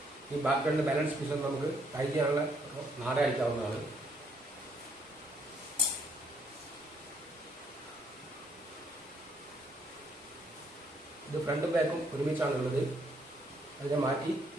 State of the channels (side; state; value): both; normal; correlation 0.68